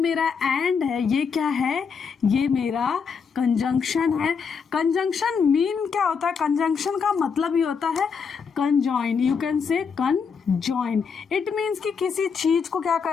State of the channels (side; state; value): right; quieter; 5.9 dB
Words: एंड है ये क्या है? ये मेरा कंजंक्शन है। कंजंक्शन मीन क्या होता है? कंजंक्शन का मतलब ही होता है कंजॉइन। यू कैन से कंजॉइन। इट मीन्स कि किसी चीज को क्या